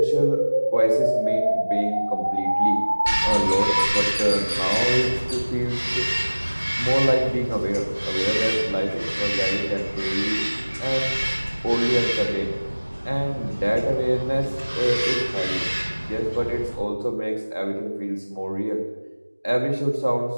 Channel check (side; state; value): both; inverted; correlation -1.00